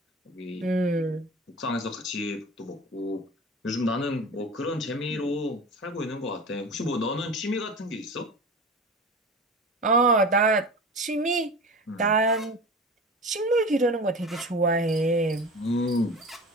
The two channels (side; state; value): both; normal; correlation 0.33